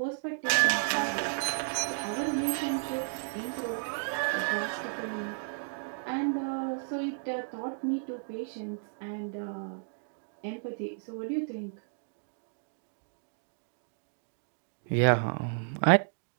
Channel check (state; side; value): silent; left; digital silence